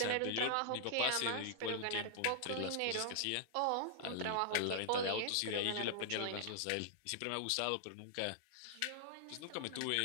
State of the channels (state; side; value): different; both; correlation -0.01